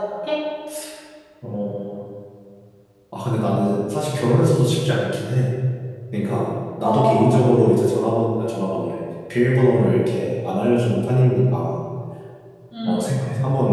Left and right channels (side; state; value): both; identical; correlation 1.00